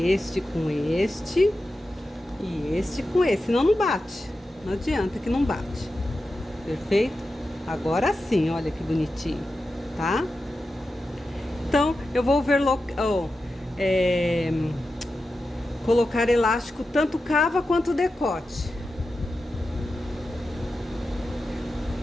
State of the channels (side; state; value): both; normal; correlation 0.91